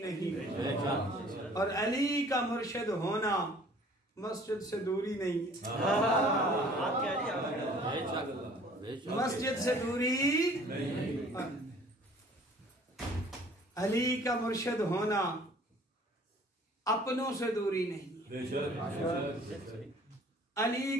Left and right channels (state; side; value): normal; both; correlation 0.53